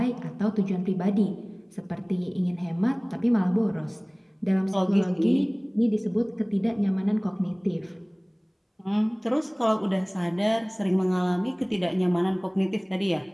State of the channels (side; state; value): both; identical; correlation 1.00